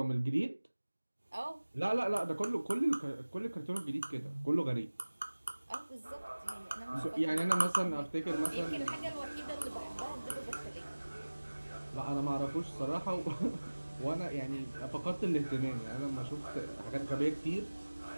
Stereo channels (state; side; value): inverted; both; correlation -1.00